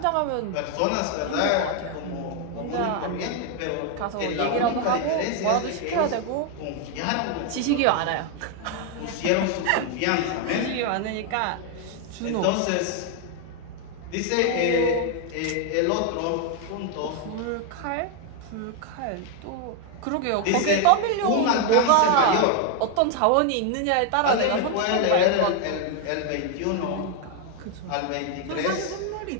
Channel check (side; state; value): both; different; correlation 0.01